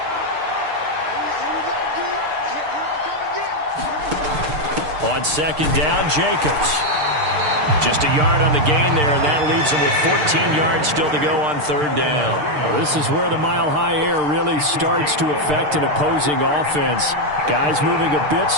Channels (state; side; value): late; left; 6.7 ms